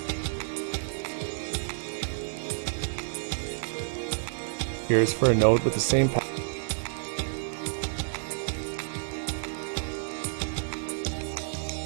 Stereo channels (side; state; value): left; silent; digital silence